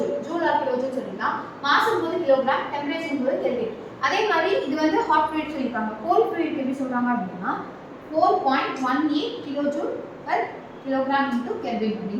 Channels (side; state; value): both; identical; correlation 1.00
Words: ஜூல் ஆர் கிலோஜூல் சொல்லிடலாம். மாஸ்ங்கும்போது கிலோகிராம், டெம்பரேச்சர்ங்கும்போது கெல்வின். அதே மாதிரி இது வந்து ஹாட் ஃப்ளூயிட் சொல்லிருக்காங்க. கோல்ட் ஃப்ளூயிட் எப்படி சொல்றாங்க அப்படினா 4.18 kilojoule per kilogram into Kelvin